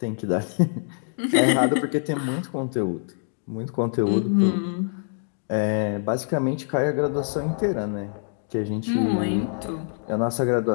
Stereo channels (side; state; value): right; silent; digital silence